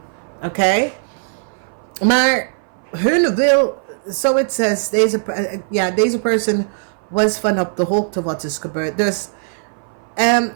oké? Maar hun wil, so it says, deze person was van op de hoogte wat is gebeurd. Dus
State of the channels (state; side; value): silent; left; 60 dB below the other